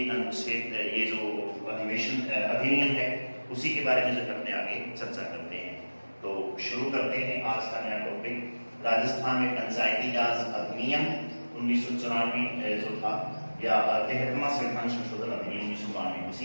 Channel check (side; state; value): both; inverted; correlation -1.00